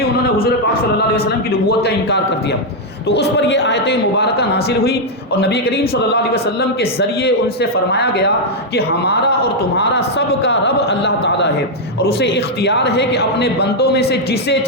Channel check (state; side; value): normal; both; correlation -0.01